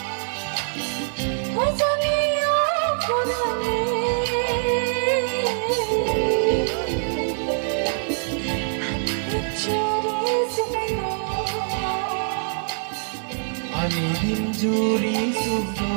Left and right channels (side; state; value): left; silent; digital silence